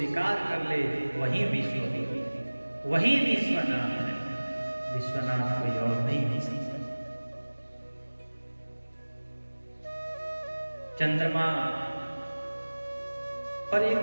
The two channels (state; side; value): inverted; both; correlation -1.00